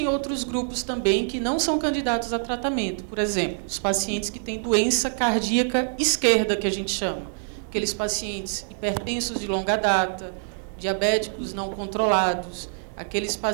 outros grupos também que não são candidatos a tratamento. Por exemplo, os pacientes que têm doença cardíaca esquerda, que a gente chama. Aqueles pacientes hipertensos de longa data, diabéticos não controlados, aqueles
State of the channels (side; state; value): left; silent; digital silence